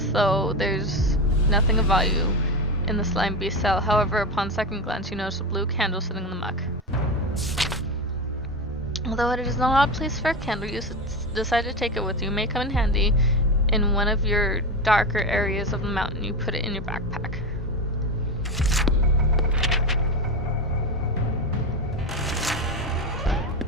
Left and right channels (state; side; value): normal; both; correlation 0.19